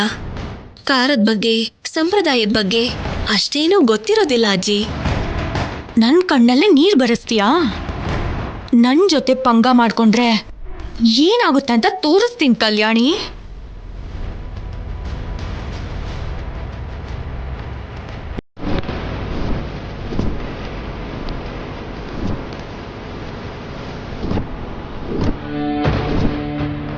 ಕಾರದ ಬಗ್ಗೆ ಸಂಪ್ರದಾಯದ ಬಗ್ಗೆ ಅಷ್ಟೇನೂ ಗೊತ್ತಿರೋದಿಲ್ಲ ಅಜ್ಜಿ. ನನ್ನ ಕಣ್ಣಲ್ಲೇ ನೀರು ಬರೆಸ್ತೀಯಾ? ನನ್ನ ಜೊತೆ ಪಂಗ ಮಾಡ್ಕೊಂಡ್ರೆ ಏನಾಗುತ್ತೆ ಅಂತ ತೋರಿಸ್ತೀನಿ ಕಲ್ಯಾಣಿ.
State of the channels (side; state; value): both; identical; correlation 1.00